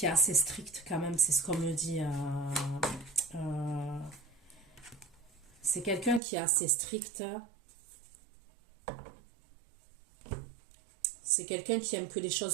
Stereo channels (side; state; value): left; drops out; at 6.2 s